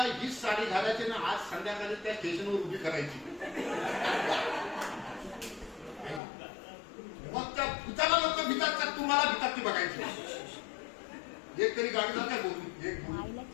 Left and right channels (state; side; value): drops out; right; at 6.2 s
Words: हीच साडी घालायची ना आज संध्याकाळी त्या स्टेशनवर उभी करायची. मग त्या भूताला लोक भीतात का तुम्हाला भीतात ती बघायची. एक तरी गाडी जात काय बोलली,